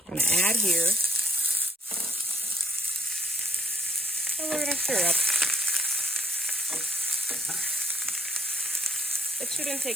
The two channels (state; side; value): normal; both; correlation 0.67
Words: I'm going to add here. And we're going to stir up. It shouldn't